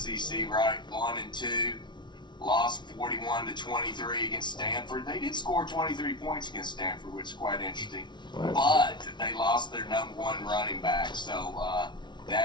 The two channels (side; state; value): right; late; 0.22 ms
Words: right? 1 and 2. Lost 41-23 against Stanford. They did score 23 points against Stanford, which is quite interesting. Right. But they lost their number 1 running back, so